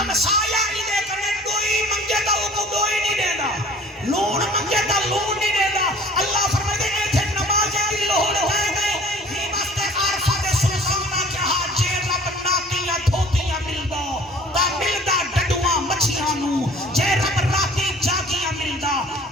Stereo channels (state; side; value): normal; both; correlation 0.49